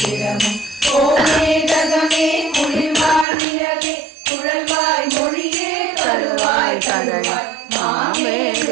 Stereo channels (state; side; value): drops out; left; at 3.2 s